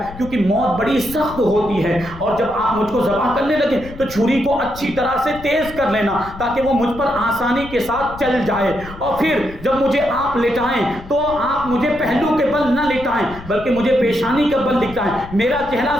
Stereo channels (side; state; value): left; noise; rumble, 15 dB below the sound